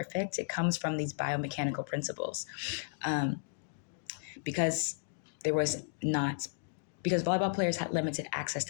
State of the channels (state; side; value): silent; right; digital silence